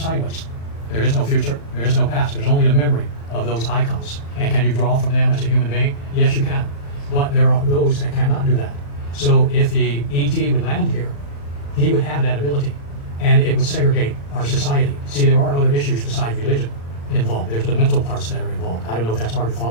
There is no future, there is no past, there's only the memory of those icons. And can you draw from them as a human being? Yes, you can. But there are those that cannot do that. So if the ET would land here, he would have that ability, and it would segregate our society. See, there are other issues besides religion involved. There's the mental parts that are involved. I don't know if that's hard to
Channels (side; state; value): right; late; 35 ms